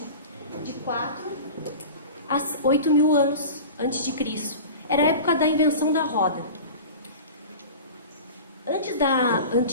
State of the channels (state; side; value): inverted; both; correlation -0.34